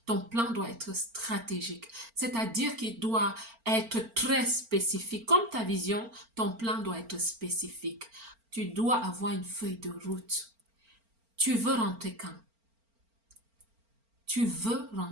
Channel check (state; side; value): late; left; 4.4 ms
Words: Ton plan doit être stratégique. C'est-à-dire qu'il doit être très spécifique. Comme ta vision, ton plan doit être spécifique. Tu dois avoir une feuille de route. Tu veux rentrer quand? Tu